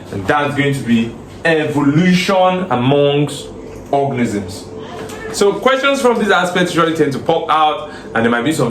And that's going to be evolution amongst organisms. So questions from these aspects usually tend to pop out, and there might be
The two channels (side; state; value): both; identical; correlation 1.00